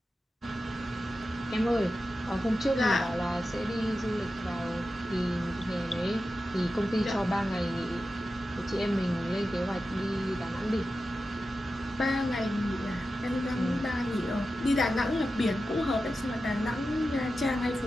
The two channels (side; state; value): both; normal; correlation 0.92